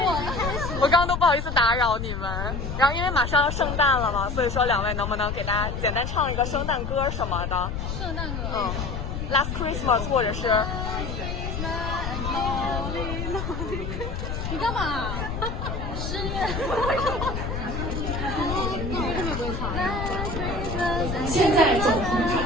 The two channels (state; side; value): noise; left; rumble, 4 dB below the sound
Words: 了。我刚刚都不好意思打扰你们。然后因为马上要圣诞了嘛，所以说两位能不能给大家简单唱一个圣诞歌什么的？圣诞歌。Last Christmas 或者是。你干嘛？10月。现在走红